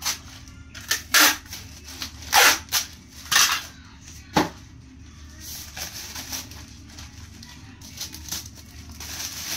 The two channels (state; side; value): identical; both; correlation 1.00